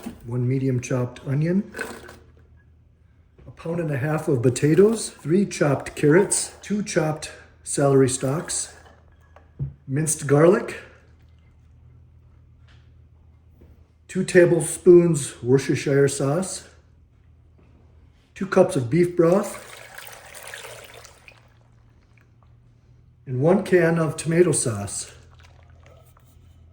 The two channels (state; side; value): identical; both; correlation 1.00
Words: 1 medium chopped onion, 1.5 pounds of potatoes, 3 chopped carrots, 2 chopped celery stalks, minced garlic, 2 tablespoons Worcestershire sauce, 2 cups of beef broth, and 1 can of tomato sauce.